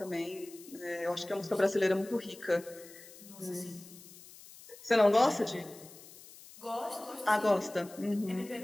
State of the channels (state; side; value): noise; left; hiss, 19 dB below the sound